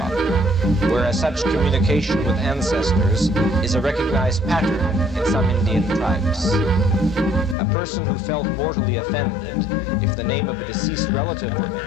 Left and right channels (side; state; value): right; drops out; at 7.6 s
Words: whereas such communication with ancestors is a recognized pattern in some Indian tribes. A person who felt mortally offended if the name of a deceased relative were